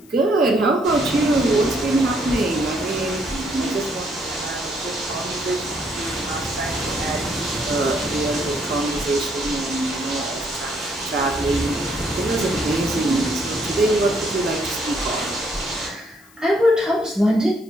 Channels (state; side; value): noise; left; hiss, 27 dB below the sound